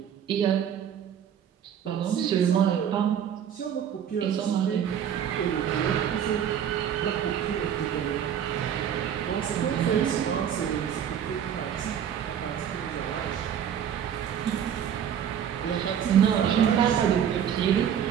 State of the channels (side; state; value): left; quieter; 8.9 dB